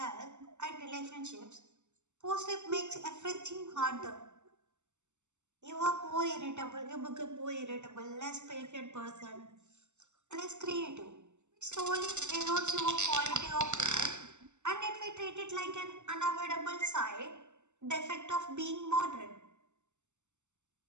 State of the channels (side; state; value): left; late; 0.84 ms